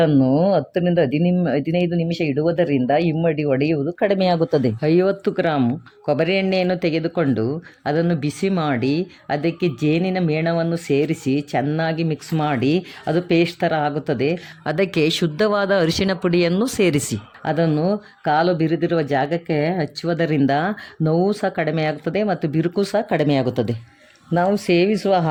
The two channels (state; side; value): identical; both; correlation 1.00